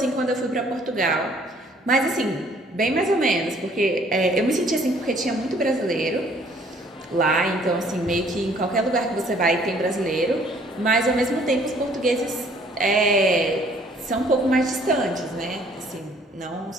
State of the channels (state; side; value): normal; both; correlation 0.59